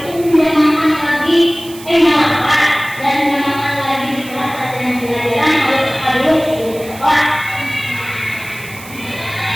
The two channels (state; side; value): noise; right; hiss, 17 dB below the sound